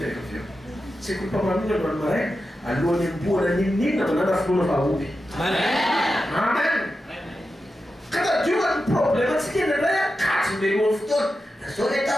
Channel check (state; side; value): normal; both; correlation 0.90